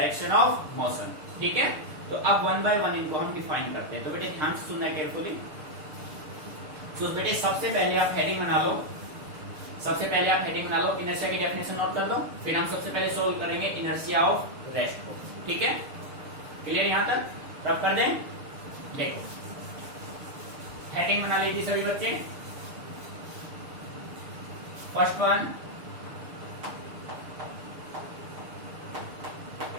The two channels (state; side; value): late; left; 6.7 ms